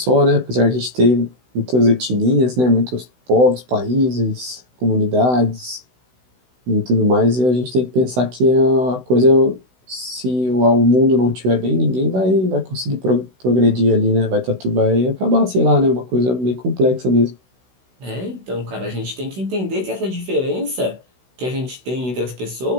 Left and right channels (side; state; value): left; late; 16 ms